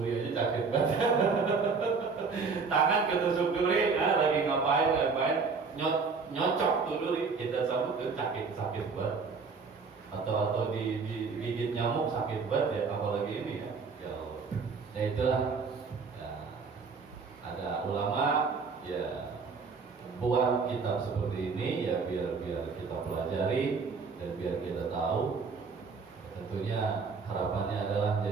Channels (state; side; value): quieter; left; 4.9 dB